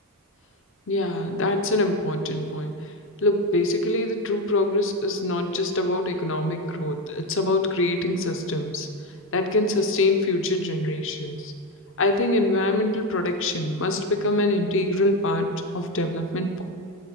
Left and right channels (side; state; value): both; normal; correlation 0.14